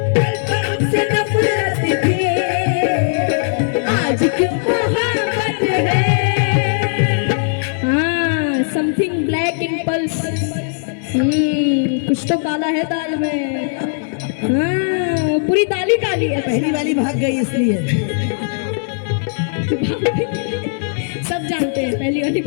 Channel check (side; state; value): right; silent; digital silence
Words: कल तो हमसे नफरत थी, आज क्यों मोहब्बत है। हाँ, समथिंग ब्लैक इन पल्स। कुछ तो काला है दाल में। हाँ, पूरी दाल ही काली है। पहली वाली भाग गई इसलिए सब जानते हैं पहली वाली